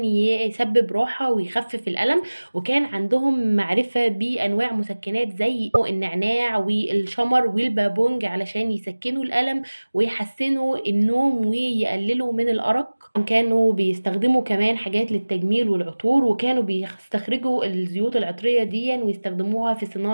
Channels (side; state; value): both; inverted; correlation -1.00